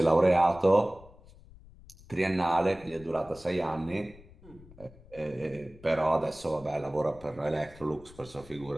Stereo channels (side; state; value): left; noise; rumble, 22 dB below the sound